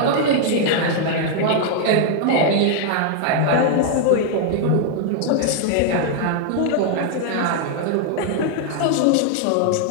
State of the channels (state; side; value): different; both; correlation 0.00